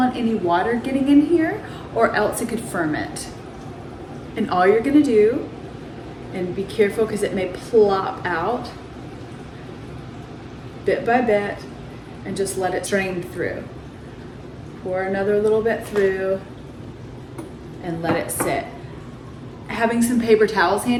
any water getting in here, or else it could ferment. And all you're gonna do, and be careful because it may plop out bit by bit, and just let it drain through. Pour another little bit through and let it sit. Having some paper towels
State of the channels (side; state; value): both; identical; correlation 1.00